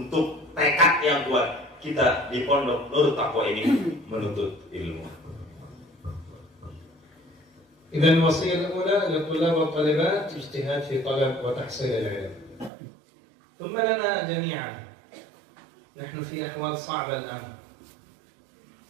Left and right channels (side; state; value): left; drops out; at 12.7 s